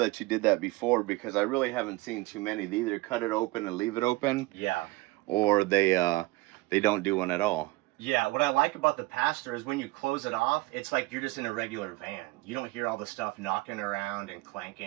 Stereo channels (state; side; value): quieter; left; 21.0 dB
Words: you did that before, because I really haven't seen too many. They either cut it open and leave it open. Yeah. Or they don't do one at all. Yeah, what I like about the pass-through is when you close it off, it's like you're just in a regular van. You don't hear all the stuff knocking around and